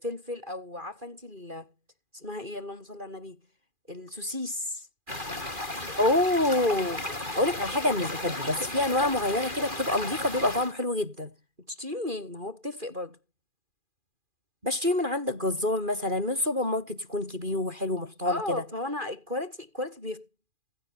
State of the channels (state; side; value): late; left; 2.4 ms